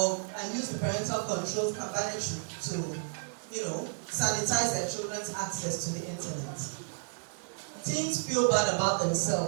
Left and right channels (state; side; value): silent; left; 57 dB below the other